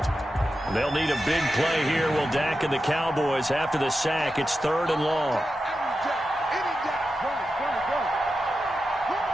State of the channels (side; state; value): both; normal; correlation 0.90